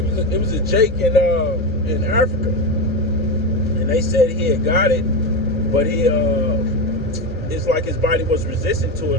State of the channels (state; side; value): normal; both; correlation 0.16